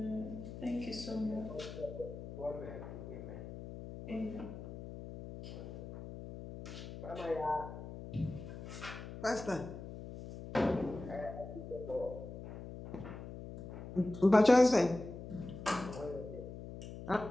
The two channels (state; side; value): noise; left; hum, 10 dB below the sound